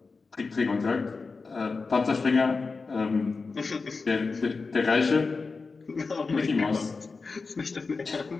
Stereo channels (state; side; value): quieter; right; 4.3 dB